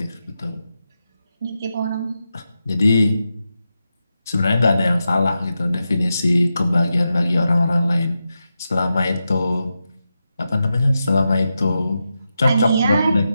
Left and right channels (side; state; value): both; inverted; correlation -0.89